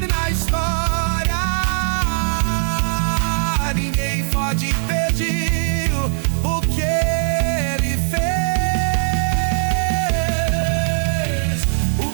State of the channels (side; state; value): left; silent; digital silence